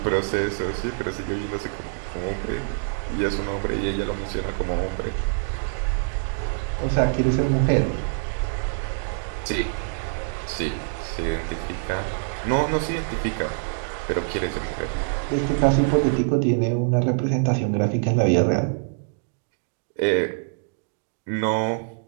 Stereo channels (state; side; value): silent; left; digital silence